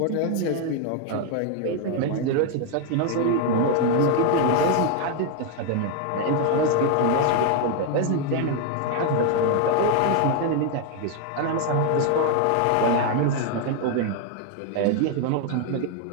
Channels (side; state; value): both; different; correlation 0.01